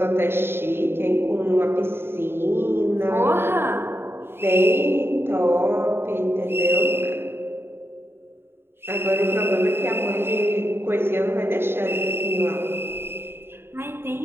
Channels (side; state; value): left; late; 0.11 ms